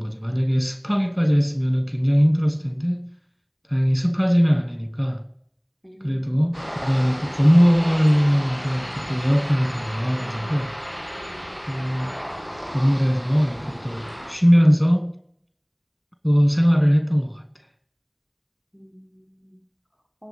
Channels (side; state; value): both; identical; correlation 1.00